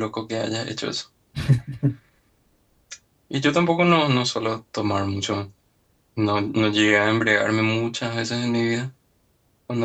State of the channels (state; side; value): identical; both; correlation 1.00